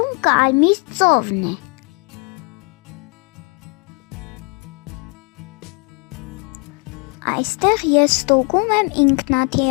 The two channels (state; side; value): quieter; right; 33.8 dB